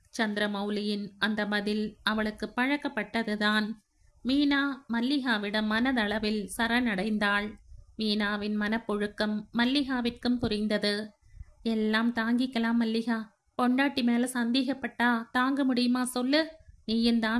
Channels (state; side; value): identical; both; correlation 1.00